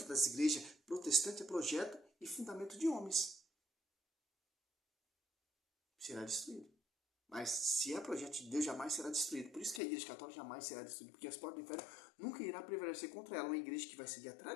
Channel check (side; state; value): right; drops out; at 9.8 s